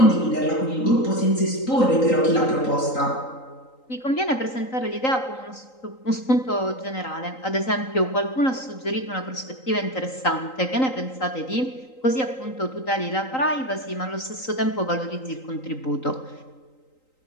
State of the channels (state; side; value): late; right; 3.9 ms